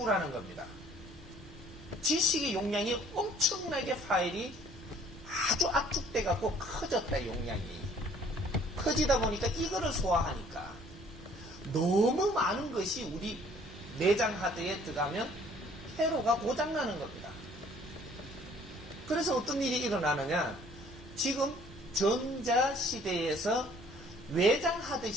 겁니다. 지식의 용량이 엄청나게 파일이 아주 압축돼 갖고 커졌다. 용량이 커지다 보니까 이거를 소화하니까 너무 많은 것이 우리 내장 하드에 들어가면 회로가 고장나는 겁니다. 그래서 어떤 일이 일어나느냐, 지금 전자 시대에서 외장 하드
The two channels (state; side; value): normal; both; correlation 0.57